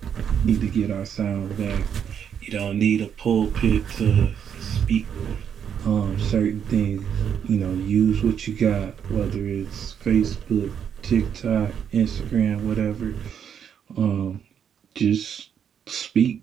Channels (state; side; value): quieter; left; 8.1 dB